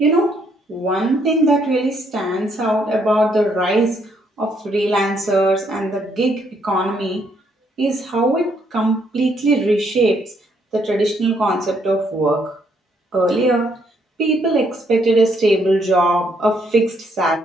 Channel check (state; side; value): normal; both; correlation 0.71